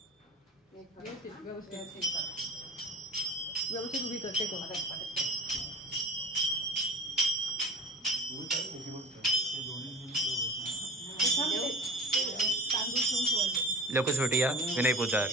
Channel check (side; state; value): both; normal; correlation 0.38